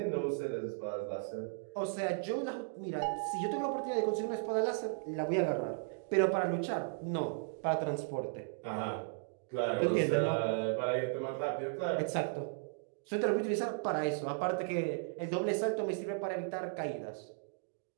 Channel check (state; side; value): silent; left; digital silence